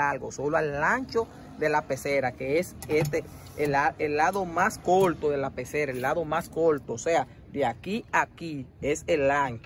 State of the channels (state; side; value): identical; both; correlation 1.00